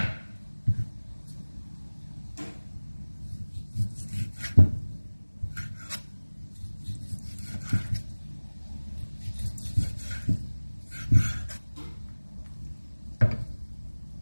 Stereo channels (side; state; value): both; inverted; correlation -1.00